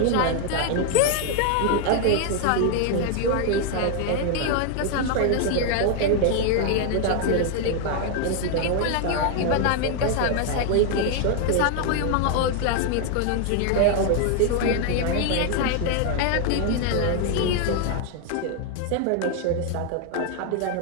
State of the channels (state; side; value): different; both; correlation 0.00